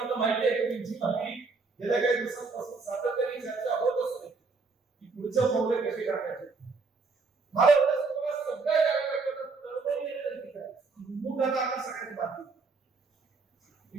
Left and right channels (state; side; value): quieter; left; 4.2 dB